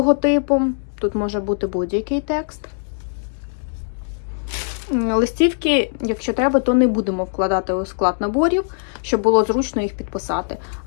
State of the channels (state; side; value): silent; right; digital silence